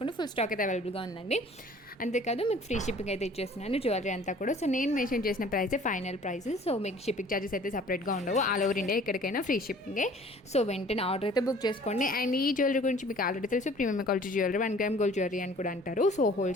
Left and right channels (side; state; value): both; normal; correlation 0.51